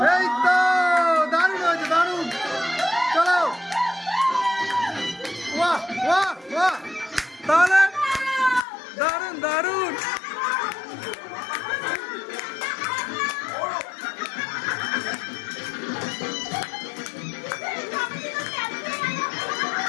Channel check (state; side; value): drops out; right; at 8.6 s